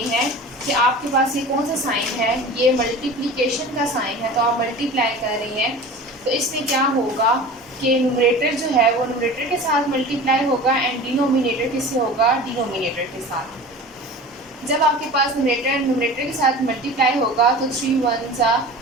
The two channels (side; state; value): both; normal; correlation 0.37